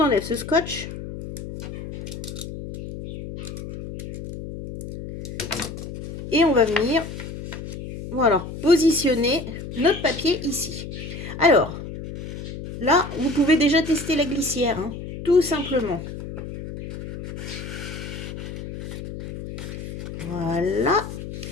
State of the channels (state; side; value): noise; left; hum, 9 dB below the sound